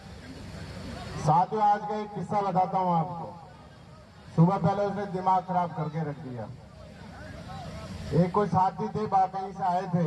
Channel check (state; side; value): identical; both; correlation 1.00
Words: साधु आज का एक किस्सा बताता हूँ आपको। सुबह पहले उसने दिमाग खराब करके रख दिया। एक कोई साथी थे, कहीं से आए थे